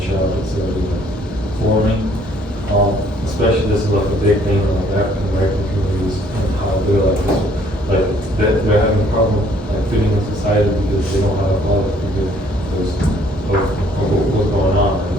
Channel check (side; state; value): both; normal; correlation 0.62